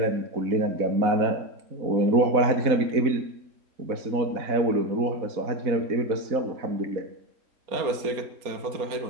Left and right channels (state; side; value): late; left; 4.2 ms